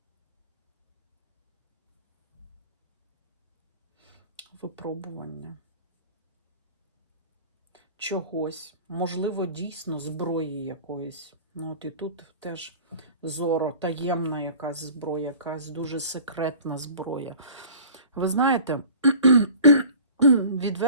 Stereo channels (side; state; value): both; inverted; correlation -0.43